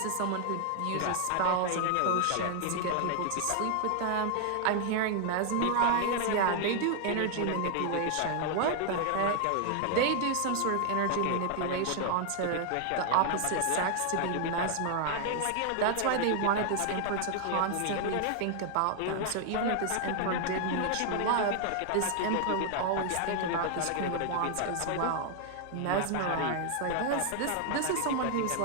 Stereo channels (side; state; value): both; different; correlation 0.00